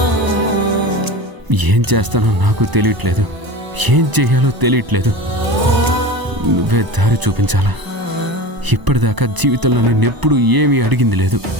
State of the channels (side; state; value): left; late; 1.0 ms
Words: ఏం చేస్తానో నాకు తెలియట్లేదు, ఏం చెయ్యాలో తెలియట్లేదు. నువ్వే దారి చూపించాలా? ఇప్పటిదాకా జీవితంలో నేనెప్పుడు ఏమీ అడిగింది లేదు.